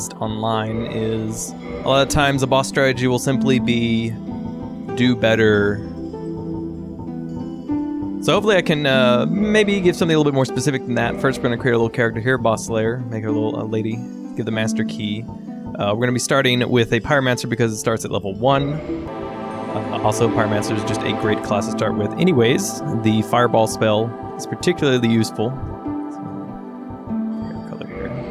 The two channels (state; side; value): identical; both; correlation 1.00